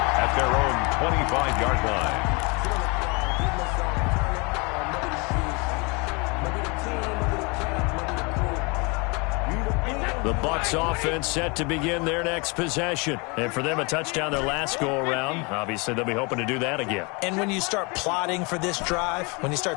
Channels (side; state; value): right; quieter; 29.5 dB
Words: their own 25-yard line. The Bucs offense set to begin their next possession. And for them, a touchdown their last go-around. Obviously, they'll be hoping to do that again. And when you start plotting for this drive, when you